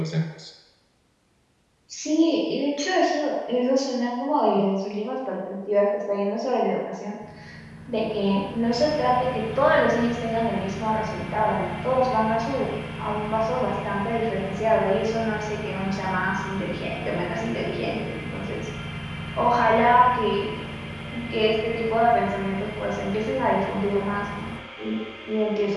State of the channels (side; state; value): both; identical; correlation 1.00